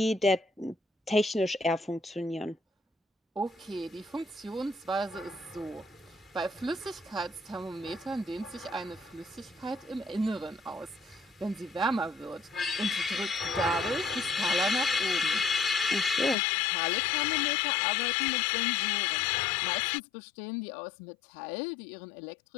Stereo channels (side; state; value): right; drops out; at 16.4 s